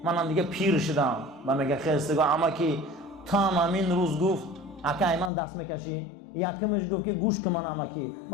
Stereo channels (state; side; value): drops out; right; at 5.3 s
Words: منم دیگه پیر شدم و میگه خیستگاه امکی تا همین روز گفت اکه من دست میکشی یکمش گفت که گوش که من امکی